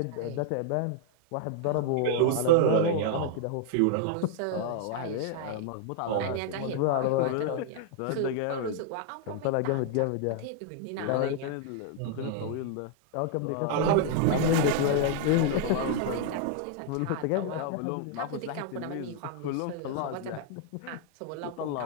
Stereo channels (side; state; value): both; different; correlation 0.00